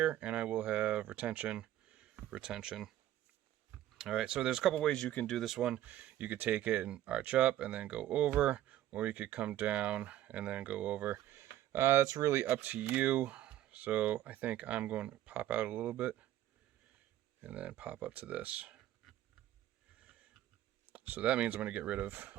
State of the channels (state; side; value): quieter; left; 13.2 dB